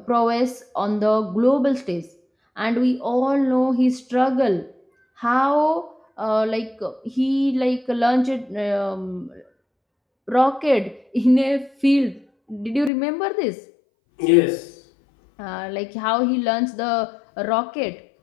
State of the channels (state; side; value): drops out; right; at 12.9 s